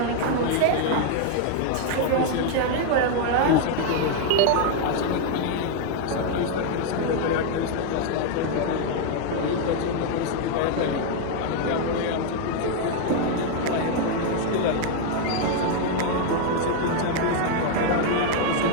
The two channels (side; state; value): both; different; correlation 0.00